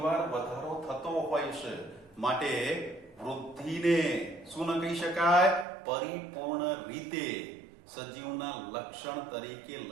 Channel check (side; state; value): left; drops out; at 5.7 s